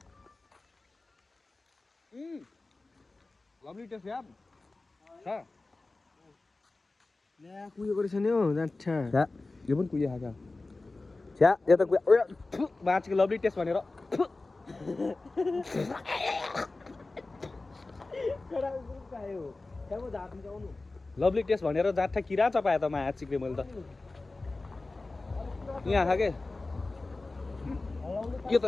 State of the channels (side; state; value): right; quieter; 3.3 dB